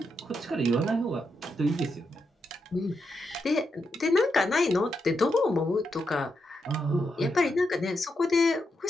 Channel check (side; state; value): both; normal; correlation 0.84